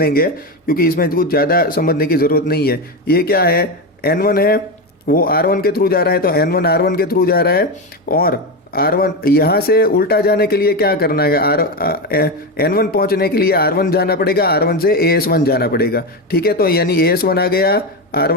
क्योंकि इसमें कुछ ज़्यादा समझने की ज़रूरत नहीं है। ये क्या है, N1 है, वो R1 के थ्रू जा रहा है, तो N1 R1 के थ्रू जा रहा है, और R1 यहाँ से उल्टा जाने के लिए क्या करना है, N1 पहुँचने के लिए R1 जाना पड़ेगा, R1 से AS1 जाना पड़ेगा। ठीक है, तो यानी AS1 आ गया,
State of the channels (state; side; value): normal; both; correlation 0.14